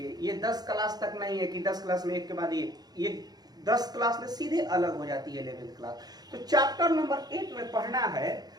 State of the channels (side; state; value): left; late; 0.19 ms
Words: ये 10 क्लास तक नहीं है कि 10 क्लास में एक के बाद ये 10 क्लास में सीधे अलग हो जाती है 11th क्लास। तो चैप्टर नंबर 8 में पढ़ना है